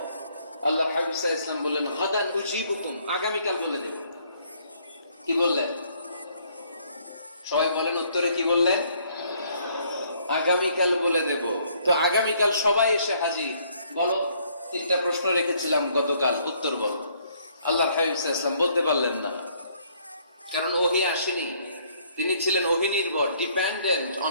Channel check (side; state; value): both; inverted; correlation -0.65